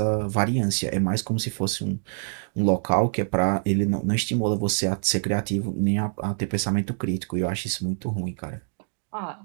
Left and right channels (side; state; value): left; silent; digital silence